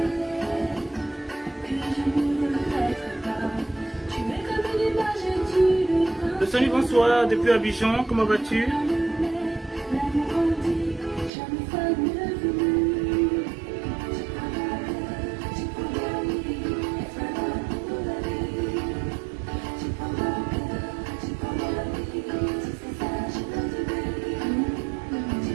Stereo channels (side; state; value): left; drops out; at 11.3 s